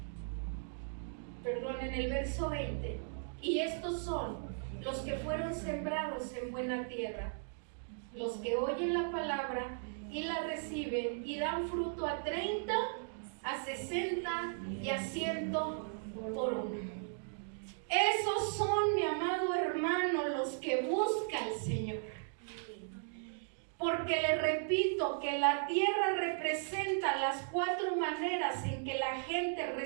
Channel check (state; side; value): silent; left; digital silence